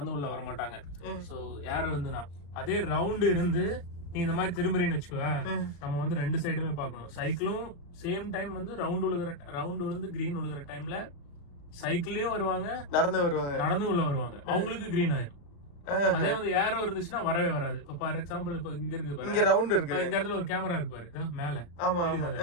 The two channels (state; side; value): late; right; 35 ms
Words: உள்ள வர மாட்டாங்க. ஸோ ஏரோ இருந்துனா அதே ரவுண்டு இருந்து நீ இந்த மாதிரி திரும்புறீன்னு வச்சுக்குவேன், நம்ம வந்து 2 சைடுமே பார்க்கணும். சைக்கிளும் சேம் டைம் வந்து ரவுண்ட் விழுந்து கிரீன் விழுகிற டைம்ல சைக்கிளையும் வருவாங்க, நடந்து உள்ள வருவாங்க, அவங்களுக்கு கிரீன் ஆயிரும். அதே வந்து ஏரோ இருந்துச்சுன்னா வரவே வராது. இப்ப ஃபார் எக்ஸாம்பிள் இப்ப இங்க இருக்கு பாரு, இங்க ரவுண்ட் இருக்கு, இந்த இடத்துல ஒரு கேமரா இருக்கு பாரு மேல. ஆமா ஆமா.